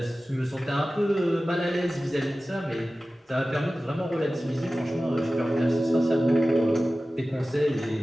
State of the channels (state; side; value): normal; both; correlation 0.96